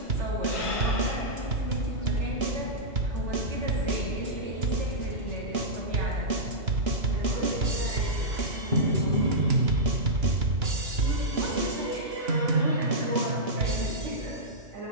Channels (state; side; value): late; left; 2.9 ms